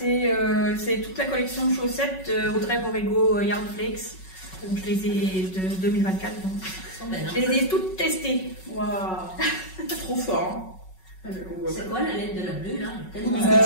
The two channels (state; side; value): late; right; 5.4 ms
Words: toute la collection de chaussettes Audrey Borrego Yarn Flakes. Donc je les ai de 2024. Donc. Je les ai toutes testées. Waouh, trop fort. C'est quoi la laine de la bleue là? Parce que